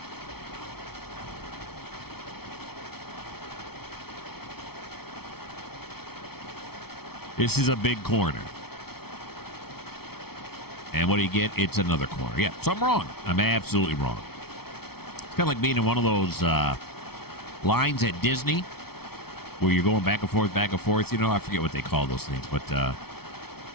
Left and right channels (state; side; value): late; right; 0.95 ms